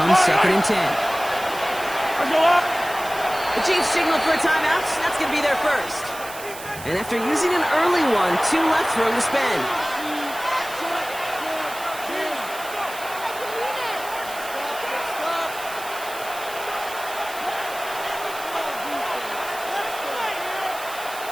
second and 10. Let's go up. The Chiefs signal for a timeout. That's going to be their first. And after using an early one, 2 left for him to spend.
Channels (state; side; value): noise; right; hiss, 13 dB below the sound